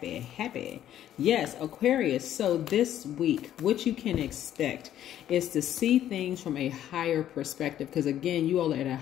Yes, Aquarius. So this week, what you can expect is to see things from a higher perspective. Because again, you all are at a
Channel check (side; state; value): right; quieter; 11.4 dB